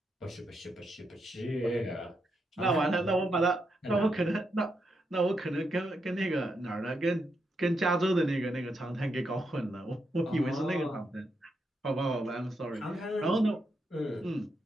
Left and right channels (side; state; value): both; normal; correlation 0.82